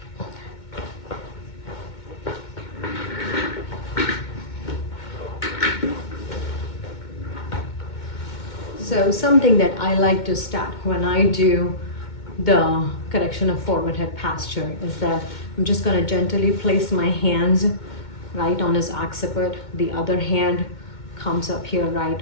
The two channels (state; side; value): late; right; 2.2 ms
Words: So something that I like to start when I do the correction of forward head posture is that I'm just going to gently place my hands right on his occiput. The other hand comes up here right